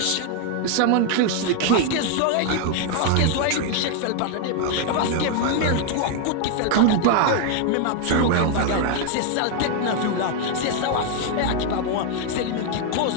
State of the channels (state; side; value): different; both; correlation 0.00